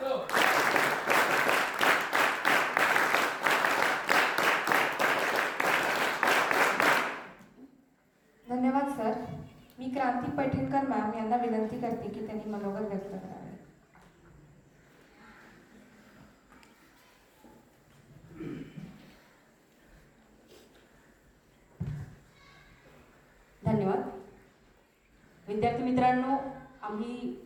धन्यवाद सर. मी क्रांती पैठणकर मॅम यांना विनंती करते की त्यांनी मनोगत व्यक्त करावे. धन्यवाद. विद्यार्थी मित्रांनो, आम्ही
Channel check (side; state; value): both; identical; correlation 1.00